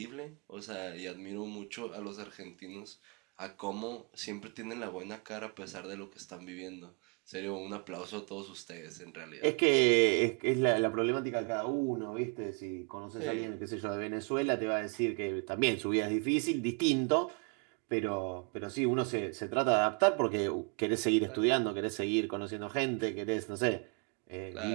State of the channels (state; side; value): quieter; left; 35.8 dB